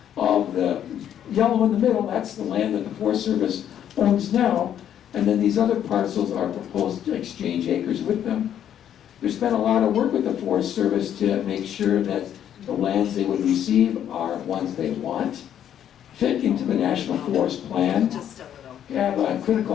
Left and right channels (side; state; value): right; quieter; 10.0 dB